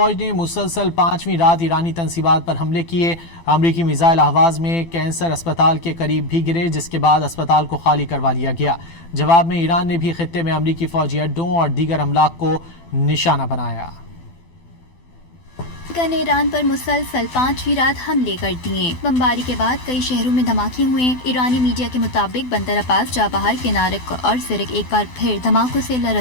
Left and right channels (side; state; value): right; late; 12 ms